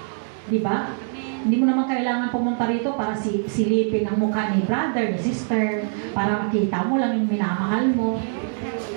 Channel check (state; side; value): silent; left; 63 dB below the other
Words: Di ba? Hindi mo naman kailangan pumunta rito para silipin ang mukha ni brother, ni sister, para makita mo lang yung minamahal mo.